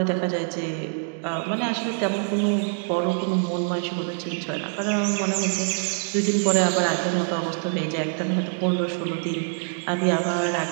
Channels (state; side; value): silent; left; 59 dB below the other